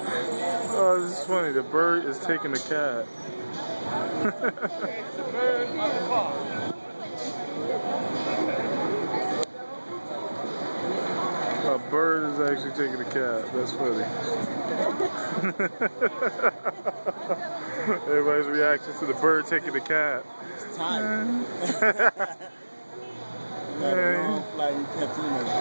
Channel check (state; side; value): inverted; both; correlation -1.00